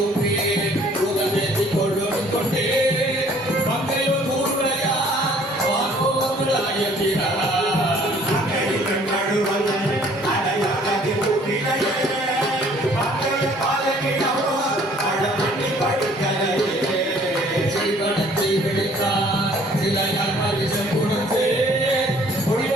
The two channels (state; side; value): normal; both; correlation 0.57